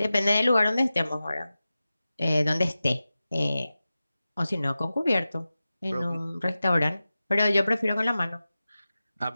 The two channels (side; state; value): both; inverted; correlation -0.95